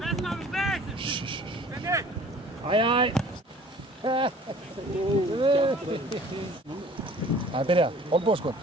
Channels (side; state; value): both; normal; correlation 0.50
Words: Aj. Það byrja. Olbóðskot.